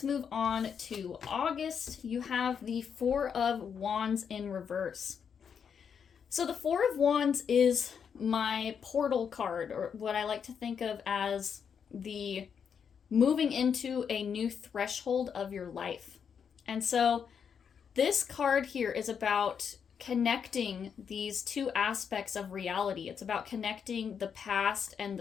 move on to August. You have the Four of Wands in reverse. So the Four of Wands is my portal card, or what I like to think of as the moving into a new threshold of your life. And so this card here is about connecting these two aspects of reality. It's about connecting the past and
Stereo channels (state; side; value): quieter; right; 7.1 dB